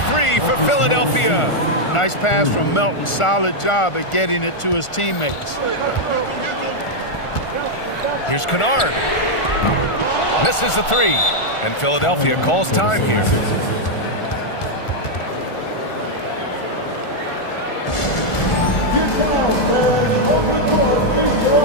3 for Philadelphia. Nice pass from Melton. Solid job at getting it to his teammates. Here's Kennard. Misses the 3. And Philadelphia calls time here.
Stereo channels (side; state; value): right; late; 1.4 ms